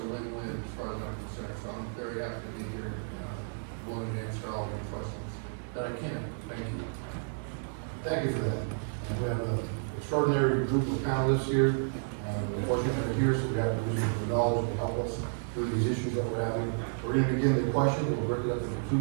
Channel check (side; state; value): left; silent; digital silence